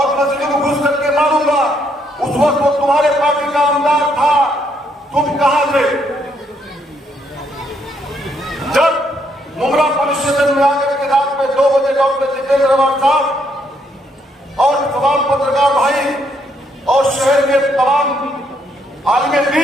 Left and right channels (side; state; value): both; normal; correlation 0.73